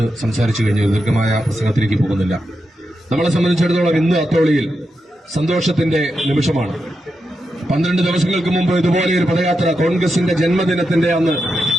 സംസാരിച്ചു കഴിഞ്ഞു. ദീർഘമായ പ്രസംഗത്തിലേക്ക് പോകുന്നില്ല. നമ്മളെ സംബന്ധിച്ചിടത്തോളം ഇന്ന് അത്തോളിയിൽ സന്തോഷത്തിന്റെ നിമിഷമാണ്. 12 ദിവസങ്ങൾക്ക് മുമ്പ് ഇതുപോലെ ഒരു പദയാത്ര, കോൺഗ്രസിന്റെ ജന്മദിനത്തിന്റെ അന്ന്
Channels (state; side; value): normal; both; correlation 0.87